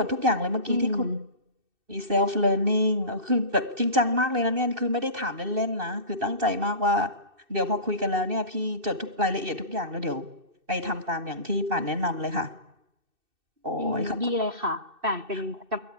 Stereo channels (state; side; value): late; left; 2.6 ms